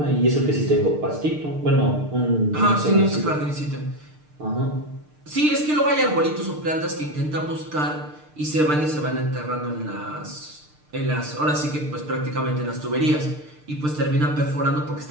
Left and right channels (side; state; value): left; late; 6.6 ms